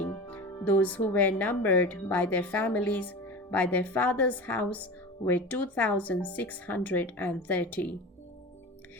Those who were numbered by their families, by their father's house, were 2,630.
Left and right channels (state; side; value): normal; both; correlation 0.31